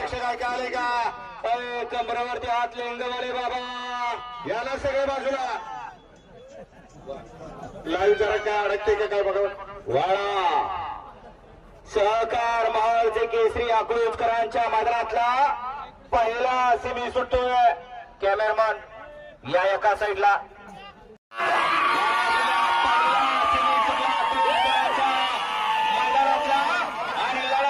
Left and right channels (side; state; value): both; identical; correlation 1.00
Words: ऐकायले का? कमरावरती हात लिंगवाले बाबा, याला सगळे बाजूला. लाईव्ह जरा काय अडकते का काय बघा. वाळा सहकार महालचे केसरी अकलूजकरांच्या मैदानातला पहिला सेमी सुटतोय. कॅमेरामन या एका साईडला.